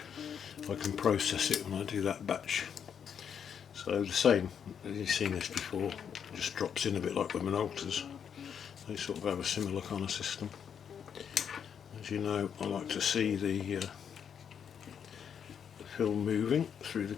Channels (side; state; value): right; quieter; 7.8 dB